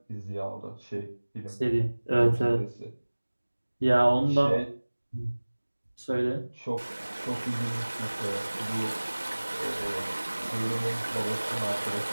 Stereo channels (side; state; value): both; inverted; correlation -1.00